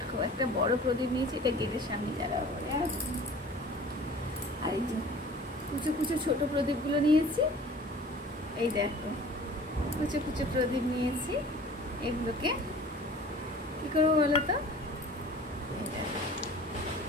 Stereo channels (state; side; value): normal; both; correlation 0.45